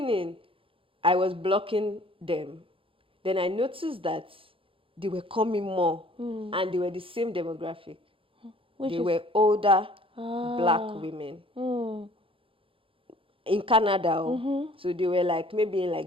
I was blocking them. Then I noticed that they were coming more and they were the same demographic. They were older black women in Canada. So they were like maybe in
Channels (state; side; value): late; left; 0.26 ms